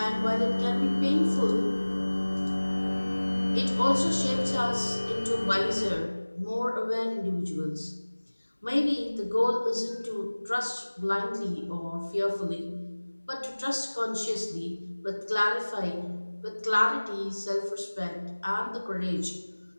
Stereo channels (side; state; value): both; inverted; correlation -1.00